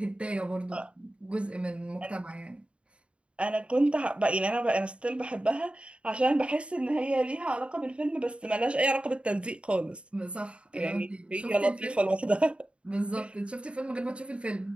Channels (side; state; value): left; late; 0.058 ms